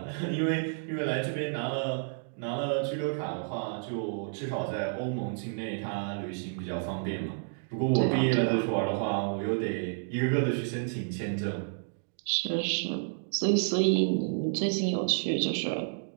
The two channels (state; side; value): silent; left; digital silence